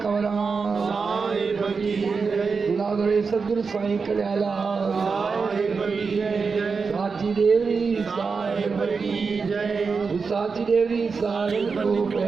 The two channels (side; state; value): left; quieter; 5.0 dB